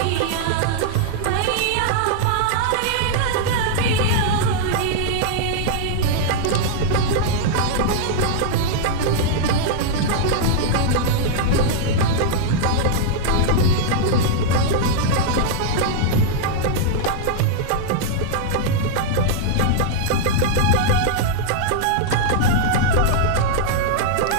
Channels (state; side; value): different; both; correlation -0.01